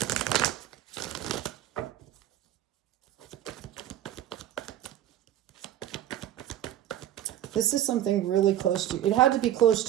This is something really close to you. It had to be close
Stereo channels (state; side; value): quieter; left; 11.8 dB